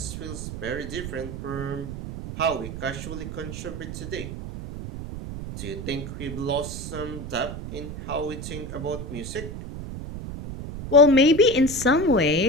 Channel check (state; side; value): noise; right; rumble, 8 dB below the sound